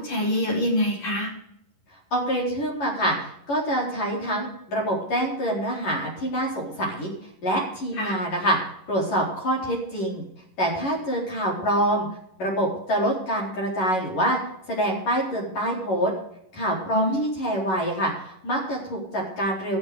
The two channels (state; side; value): late; right; 11 ms